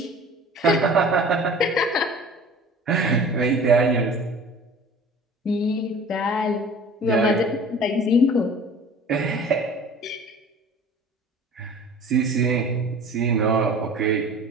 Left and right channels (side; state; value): both; normal; correlation 0.44